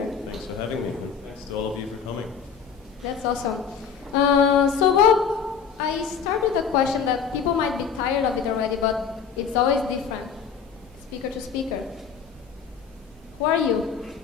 Thanks for having me. Thanks to all of you for coming. That's awesome. So Bob, I start with a question that people might be tired of it already, but it's always different, speaker to speaker. Who are you?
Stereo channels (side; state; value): right; quieter; 6.7 dB